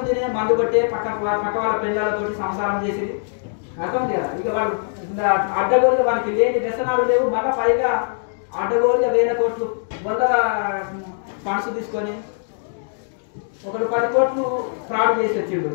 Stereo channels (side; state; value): right; silent; digital silence